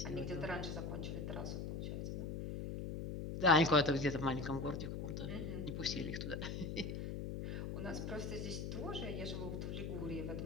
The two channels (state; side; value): noise; left; hum, 4 dB below the sound